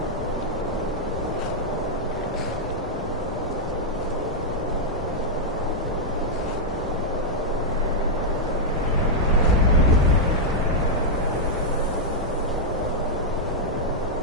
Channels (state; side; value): normal; both; correlation -0.04